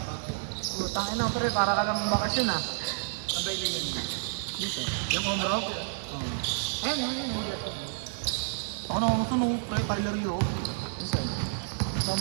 Utangin na pre, para ka lang bakasyon ah. Sabay din yun. Dito. Yung home rock. Ayun. Ako na gusto nung pre, Tyler Hero.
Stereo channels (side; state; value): left; silent; digital silence